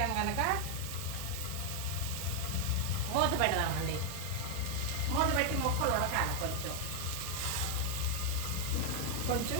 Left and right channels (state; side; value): different; both; correlation 0.00